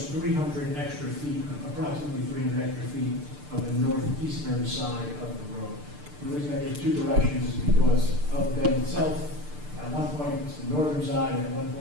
300 extra feet, approximately 300 extra feet of the northeastern side of the road. The reason I get 2 directions is because of the bend itself. At one point it's the northern side, and at one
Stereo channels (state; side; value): late; left; 6.7 ms